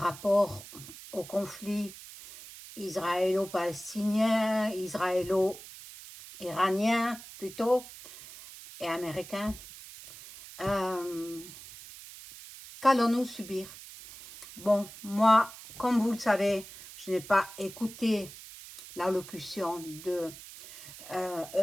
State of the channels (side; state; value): right; noise; hiss, 15 dB below the sound